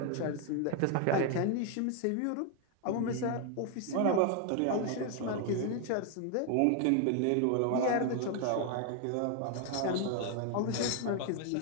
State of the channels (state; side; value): different; both; correlation 0.00